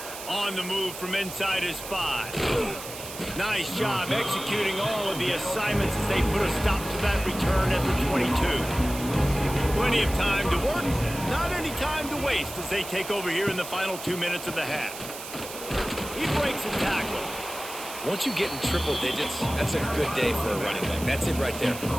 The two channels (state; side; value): noise; right; hiss, 11 dB below the sound